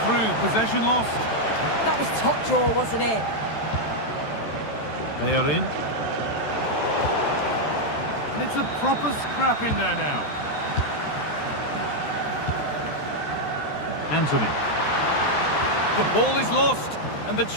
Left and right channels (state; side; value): late; right; 14 ms